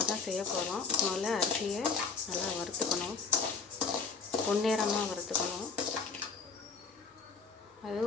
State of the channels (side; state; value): right; quieter; 4.9 dB